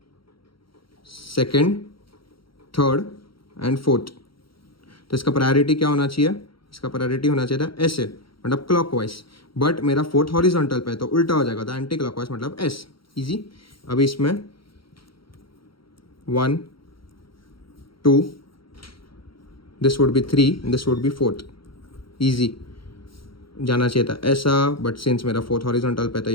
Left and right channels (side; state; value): right; late; 0.74 ms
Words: second, third and fourth, तो इसका प्रायोरिटी क्या होना चाहिए, इसका प्रायोरिटी होना चाहिए था ऐसे, मतलब क्लॉकवाइज, बट मेरा फोर्थ हॉरिजॉन्टल पे है तो उल्टा हो जाएगा, तो एंटी क्लॉकवाइज मतलब S, इजी। अभी इसमें 1, 2, this would be 3, this would be fourth, easy जाना चाहिए था ऐसा, बट सिंस मेरा फोर्थ हॉरिजॉन्टल पे तो